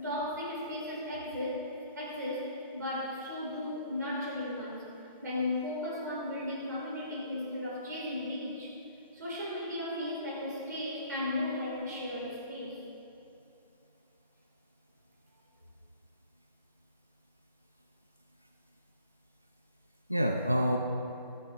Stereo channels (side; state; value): both; inverted; correlation -0.57